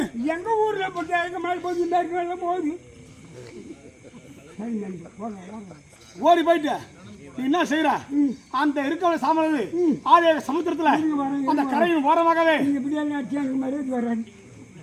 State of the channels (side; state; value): both; identical; correlation 1.00